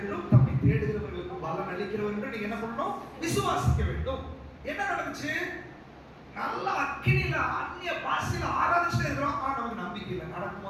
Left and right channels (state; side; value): identical; both; correlation 1.00